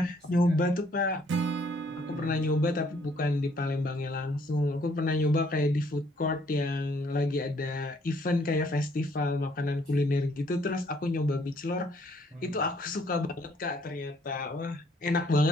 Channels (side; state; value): both; normal; correlation 0.65